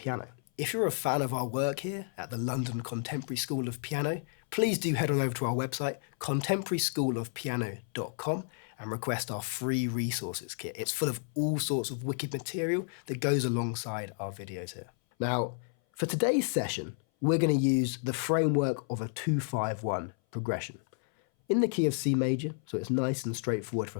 If you're a fan of our work here at the London Contemporary School of Piano, please do head on over to our website, contemporaryschoolofpiano.com, and request our free resources kit. It's full of all sorts of wicked material that goes alongside our videos here. Now, for today's session, we're going to use the framework of a 2-5-1 progression in the key of C major, so it's nice and straightforward for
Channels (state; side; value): silent; right; 57 dB below the other